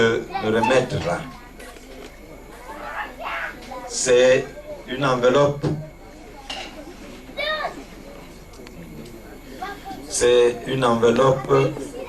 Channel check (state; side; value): identical; both; correlation 1.00